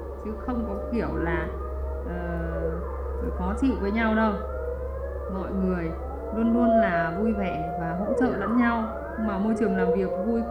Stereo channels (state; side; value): identical; both; correlation 1.00